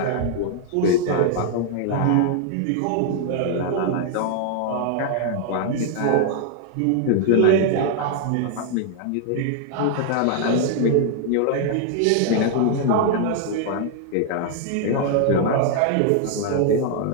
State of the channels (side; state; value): both; different; correlation 0.00